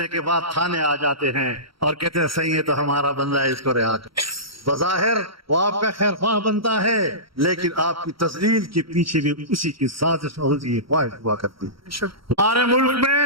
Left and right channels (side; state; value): left; late; 0.74 ms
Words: کے بعد تھانے آ جاتے ہیں اور کہتے ہیں صحیح ہے تو ہمارا بندہ ہے، اس کو رہا کر۔ بظاہر وہ آپ کا خیر خواہ بنتا ہے، لیکن آپ کی تذلیل کے پیچھے بھی اسی کی سازش اور اسی کی خواہش ہوا کرتی ہے۔ ہمارے ملک